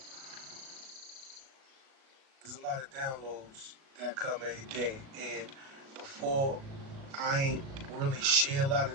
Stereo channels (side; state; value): left; late; 37 ms